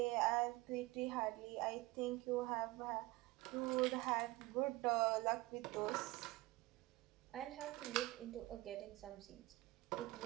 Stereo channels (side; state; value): left; quieter; 20.1 dB